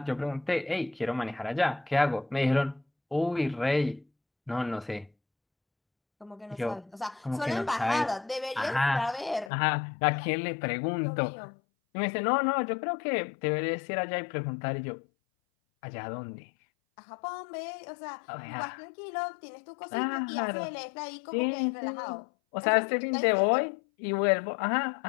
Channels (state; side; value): drops out; right; at 9.5 s